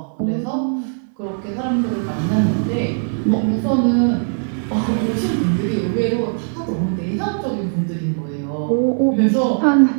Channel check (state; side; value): silent; left; digital silence